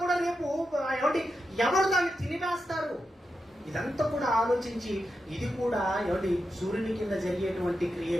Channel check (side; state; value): both; normal; correlation 0.88